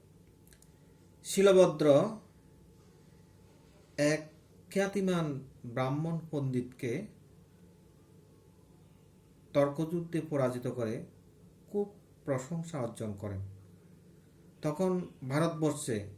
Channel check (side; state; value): both; identical; correlation 1.00